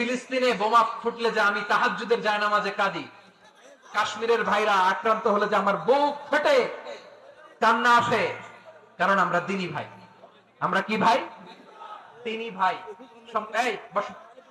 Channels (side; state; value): both; identical; correlation 1.00